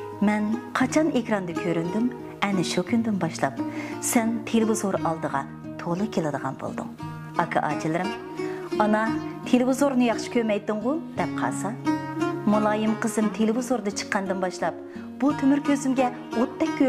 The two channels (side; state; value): both; identical; correlation 1.00